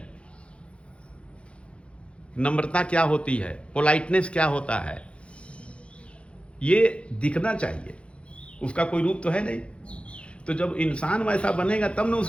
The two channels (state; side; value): late; right; 0.059 ms